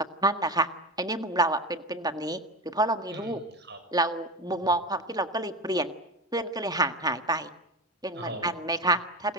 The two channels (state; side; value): normal; both; correlation 0.23